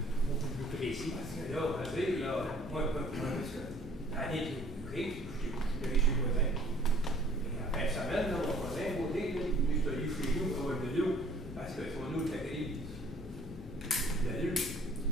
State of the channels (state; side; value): normal; both; correlation 0.56